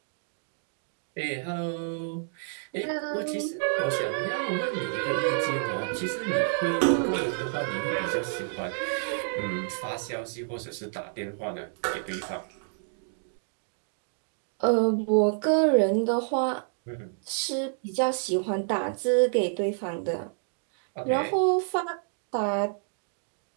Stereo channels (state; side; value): silent; left; digital silence